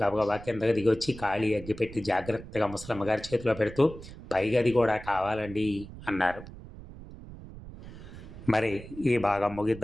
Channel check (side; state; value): right; noise; rumble, 15 dB below the sound